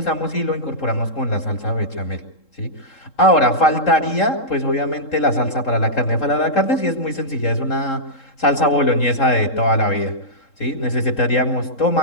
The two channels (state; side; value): late; right; 3.7 ms